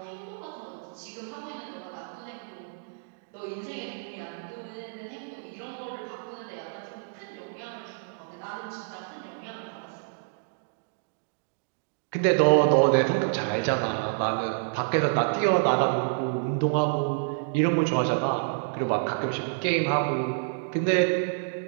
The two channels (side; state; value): left; silent; digital silence